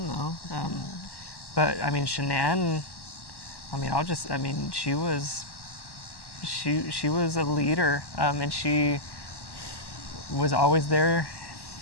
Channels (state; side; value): late; right; 1.1 ms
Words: though. But Shanann, she was a leader, and she was always there